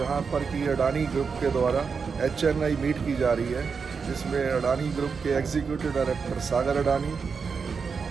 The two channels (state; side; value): quieter; left; 5.5 dB